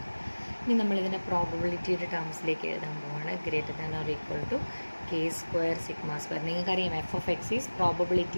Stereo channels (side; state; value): both; inverted; correlation -1.00